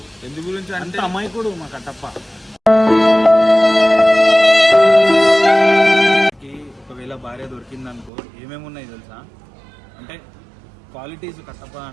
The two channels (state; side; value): drops out; left; at 8.1 s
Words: ఎందు గురించి అంటే అమ్మాయికుడు మా కట్టప్ప. ఒకవేళ భార్య దొరికిందనుకో ఏమేమి ఉన్నాయి తెలుసా? అంటే క్వాలిటీస్ కట్టప్ప